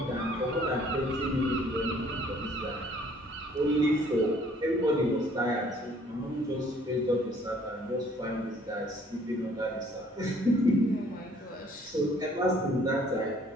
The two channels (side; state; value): both; normal; correlation 0.59